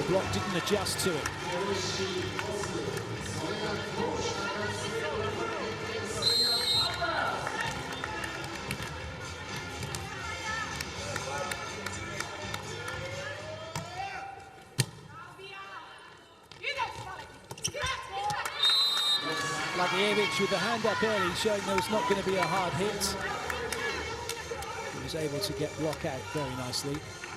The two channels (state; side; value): identical; both; correlation 1.00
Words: block didn't adjust to it. Blagojevic with the hand up early, showing there was not going to be a hard hit. He was able to get block out very nicely.